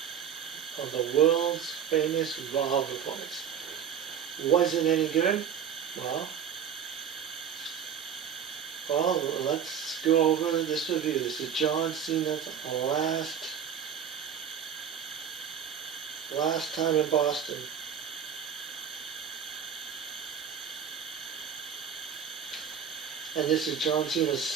of the world's famous Raw reports. Was it any good? Well, well, let's go over this review. This is John Cena's last time in Boston. And this is John Cena's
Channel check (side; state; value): left; quieter; 8.0 dB